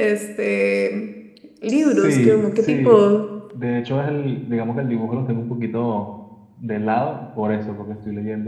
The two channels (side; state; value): both; identical; correlation 1.00